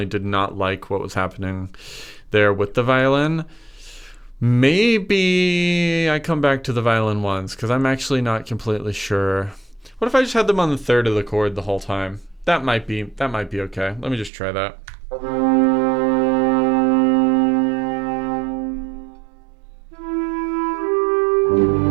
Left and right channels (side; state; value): left; drops out; at 14.3 s